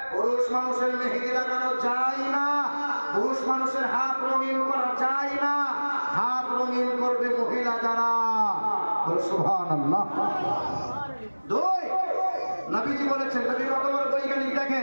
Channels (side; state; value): both; inverted; correlation -1.00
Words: পুরুষ মানুষের মেহেদি লাগানো যায় না, পুরুষ মানুষের হাত রঙিন করা যায় না। হাত রঙিন করবে মহিলা যারা। সুবহানাল্লাহ। দুই, নবীজি বলেছেন, নবী কত বড় বৈজ্ঞানিক